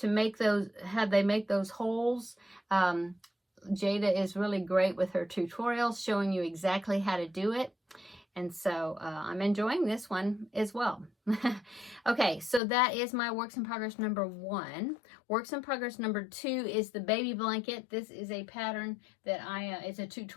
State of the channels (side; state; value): right; drops out; at 12.6 s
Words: make those, make those holes. Jada is really great with her tutorials, showing you exactly how to do it. And so I'm enjoying this one as well. Okay, so that is my works in progress number 1. Works in progress number 2 is the baby blanket. This is a pattern that it's a